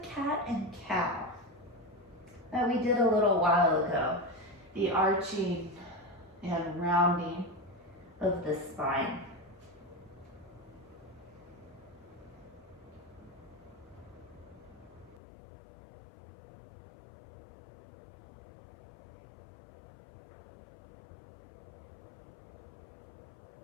cat and cow that we did a little while ago. The arching and rounding of the spine.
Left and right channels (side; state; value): right; drops out; at 15.2 s